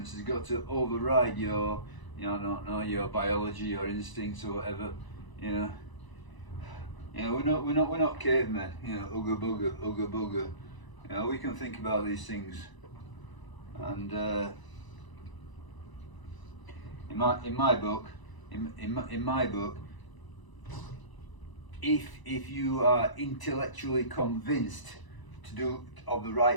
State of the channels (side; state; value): right; late; 1.0 ms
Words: has got to override your, your biology, your instincts, or whatever. We're not cavemen. Ooga booga. We can think about these things, and in my book, if you are intellectually convinced to do of the